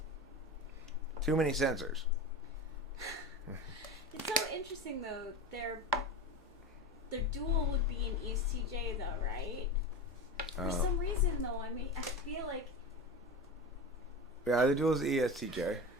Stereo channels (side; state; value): both; normal; correlation 0.27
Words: Too many censors. It's so interesting, though. Their dual would be an ESTJ, though, right? For some reason, though, I mean, I feel like... Yeah, the dual is ESTJ.